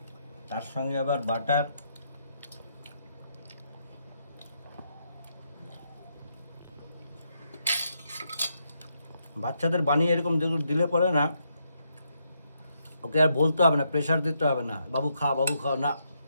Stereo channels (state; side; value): inverted; both; correlation -0.79